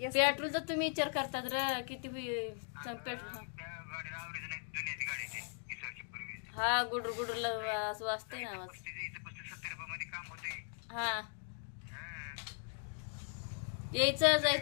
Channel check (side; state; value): right; silent; 52 dB below the other